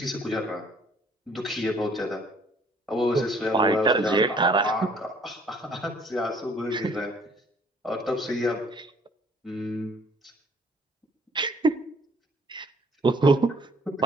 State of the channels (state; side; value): normal; both; correlation 0.59